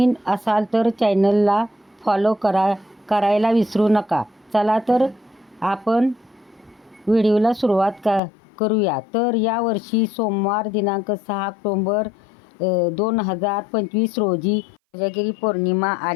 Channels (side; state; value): right; drops out; at 8.2 s